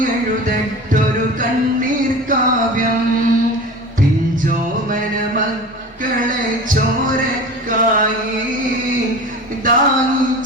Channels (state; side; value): normal; both; correlation 0.35